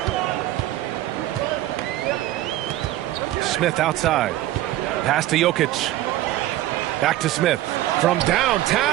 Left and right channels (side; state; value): left; quieter; 14.8 dB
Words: Smith outside. Pass to Jokic. Back to Smith. From